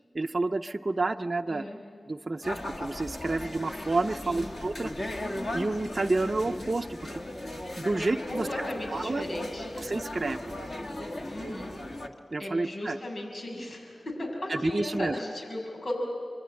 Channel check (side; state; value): both; normal; correlation 0.96